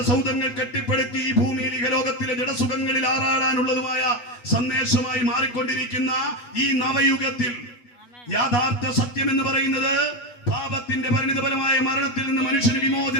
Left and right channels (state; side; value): late; right; 8.2 ms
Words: സൗധങ്ങൾ കെട്ടിപ്പടുത്തി ഈ ഭൂമിയിൽ ഇഹലോകത്തിലെ ജഡസുഖങ്ങളിൽ ആറാടാനുള്ളതുമായ സന്ദേശമായി മാറിക്കൊണ്ടിരിക്കുന്ന ഈ നവയുഗത്തിൽ യാഥാർത്ഥ സത്യം എന്ന് പറയുന്നത് പാപത്തിന്റെ പരിണിതഫലമായ മരണത്തിൽ നിന്ന് മനുഷ്യന്